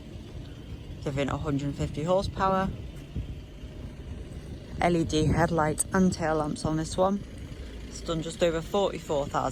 giving 150 horsepower. LED headlights and tail lamps on this one. It's done just over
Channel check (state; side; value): identical; both; correlation 1.00